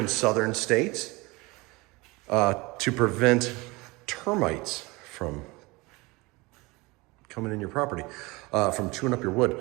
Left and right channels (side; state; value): left; quieter; 24.0 dB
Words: southern states to prevent termites from coming in your property, from chewing up your wood,